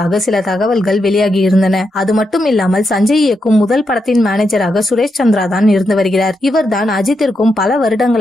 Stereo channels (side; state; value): both; normal; correlation 0.84